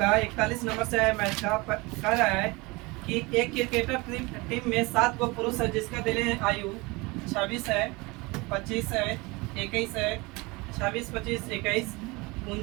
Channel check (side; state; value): left; quieter; 24.6 dB